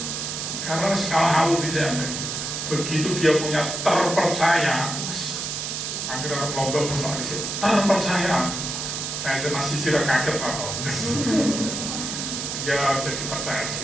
Karena skala hawu bisa ambil. Begitu dia punya terpercaya, akhirnya lomba bersama di situ terpercaya. Saya masih tidak kaget Pak. Dia jadi percaya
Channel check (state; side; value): noise; right; hiss, 4 dB below the sound